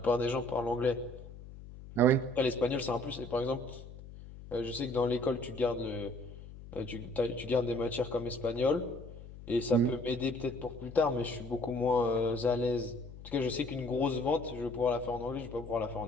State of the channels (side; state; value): left; noise; hum, 15 dB below the sound